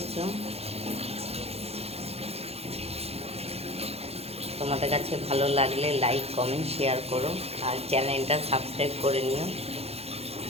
তোমাদের কাছে ভালো লাগলে লাইক, কমেন্ট, শেয়ার করো, আর চ্যানেলটা সাবস্ক্রাইব করে নিও।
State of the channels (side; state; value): left; late; 0.29 ms